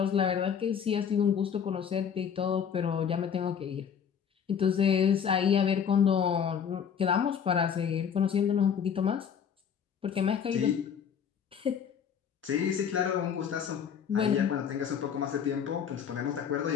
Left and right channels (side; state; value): right; quieter; 7.6 dB